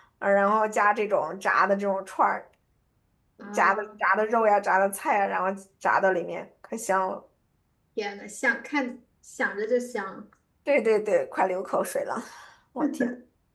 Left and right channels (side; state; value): both; identical; correlation 1.00